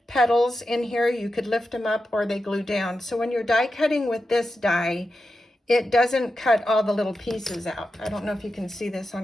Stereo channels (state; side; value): normal; both; correlation 0.90